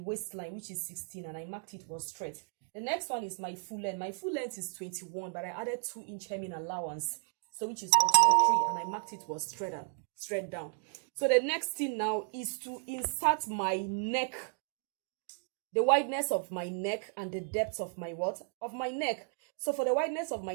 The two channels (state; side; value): silent; left; 55 dB below the other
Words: waistline, which is 16, and I marked it was straight. The next one is my full length. My full length is 21, but I added 2-inch hemming allowance, so which is 23, and I marked it was straight down. So the next thing now is to insert my neck, the wideness of my neck and the depth of my neck. So for the wideness of